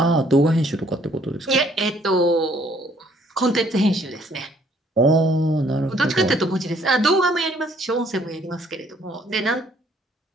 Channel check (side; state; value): both; normal; correlation 0.63